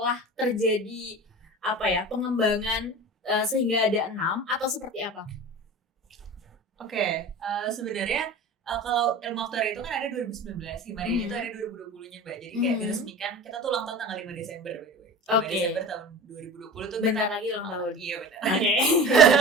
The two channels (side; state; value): both; normal; correlation 0.35